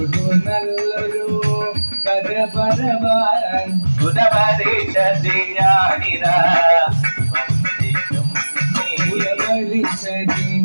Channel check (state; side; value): inverted; both; correlation -1.00